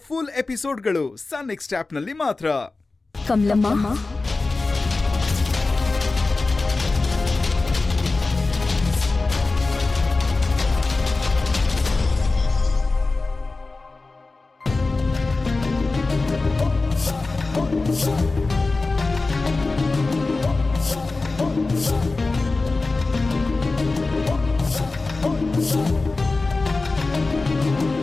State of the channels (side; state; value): right; quieter; 3.6 dB